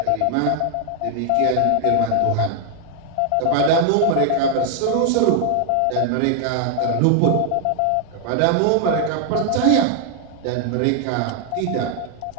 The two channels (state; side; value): different; both; correlation 0.00